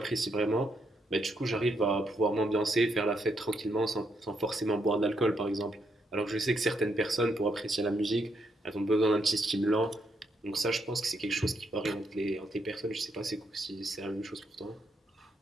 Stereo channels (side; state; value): both; normal; correlation 0.77